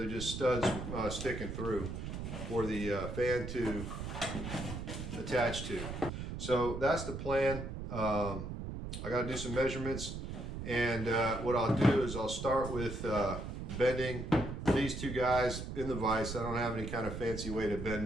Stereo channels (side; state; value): right; noise; rumble, 6 dB below the sound